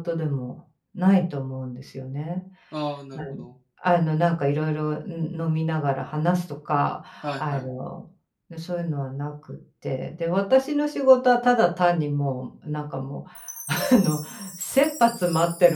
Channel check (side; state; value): both; identical; correlation 1.00